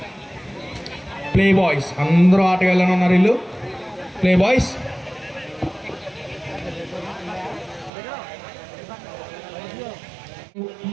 Play boys అందరూ ఆటగాళ్ళని ఉన్నారు వీళ్ళు. ప్లే బాయ్స్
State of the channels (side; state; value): left; drops out; at 7.9 s